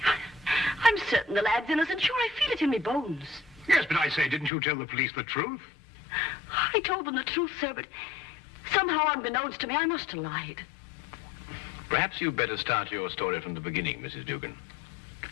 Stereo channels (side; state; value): right; drops out; at 4.5 s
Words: I'm certain the lad's innocent. Sure, I feel it in my bones. Yes, but I say, didn't you tell the police the truth? I told them the truth, sir, but somehow unbeknownst to me, I must have lied. Perhaps you'd better start your story from the beginning, Mrs. Dugan.